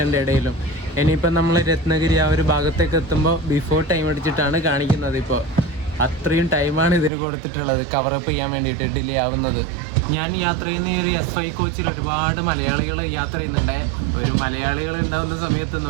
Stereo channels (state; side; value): drops out; left; at 7.1 s